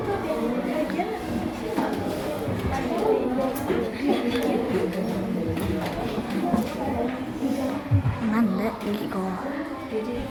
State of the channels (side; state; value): both; identical; correlation 1.00